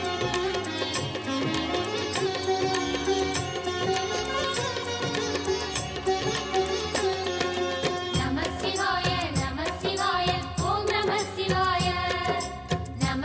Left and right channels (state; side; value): identical; both; correlation 1.00